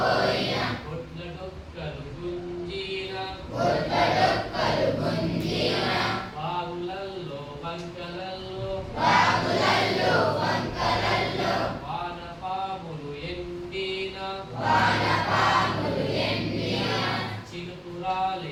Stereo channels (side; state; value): both; identical; correlation 1.00